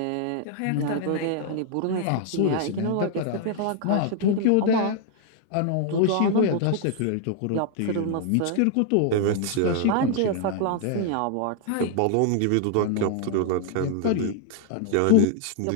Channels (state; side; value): different; both; correlation 0.00